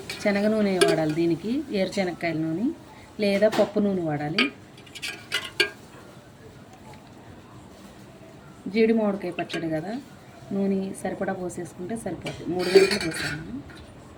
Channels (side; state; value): both; identical; correlation 1.00